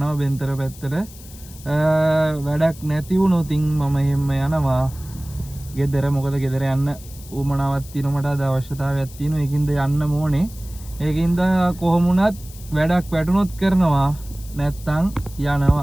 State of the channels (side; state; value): left; noise; hiss, 19 dB below the sound